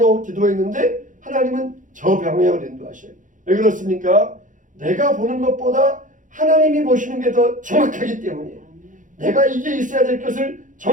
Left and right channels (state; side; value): late; left; 0.37 ms